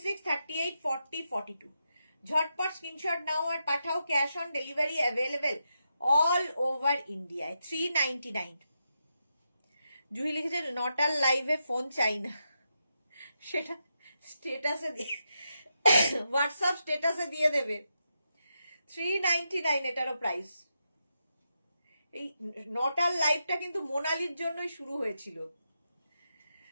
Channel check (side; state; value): both; inverted; correlation -0.85